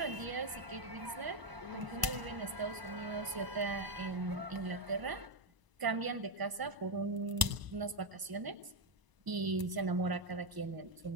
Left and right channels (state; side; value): late; left; 1.0 ms